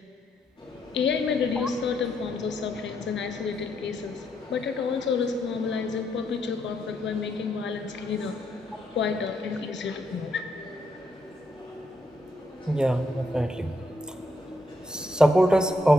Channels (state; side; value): normal; both; correlation 0.76